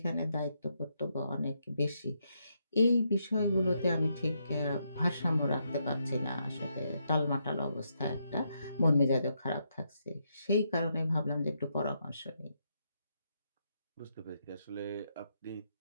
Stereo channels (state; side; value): inverted; both; correlation -0.79